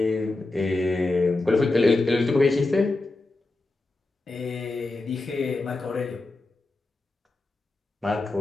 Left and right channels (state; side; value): quieter; right; 3.1 dB